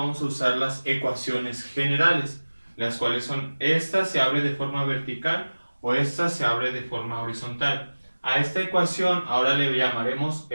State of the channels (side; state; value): both; inverted; correlation -1.00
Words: a usar las ecuaciones generales, las cuales son esta se abre de forma vertical o esta se abre de forma horizontal. A esta ecuación ahora le llamaremos